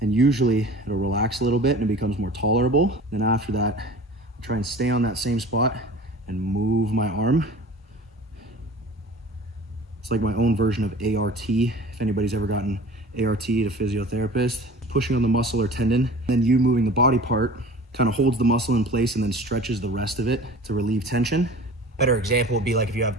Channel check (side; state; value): both; normal; correlation 0.42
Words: and usually it'll relax a little bit and it becomes more tolerable. Then after that, I try and stay on that same spot and move my arm. It's like my own version of ART. If anybody's ever gotten ART at a physiotherapist, pushing on the muscle or tendon, then you moving the body part kind of holds the muscle in place and then stretches the rest of it to relieve tension. Better example would be like if you have